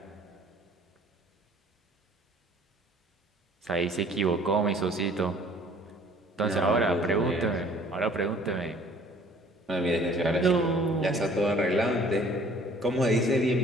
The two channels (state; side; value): normal; both; correlation 0.54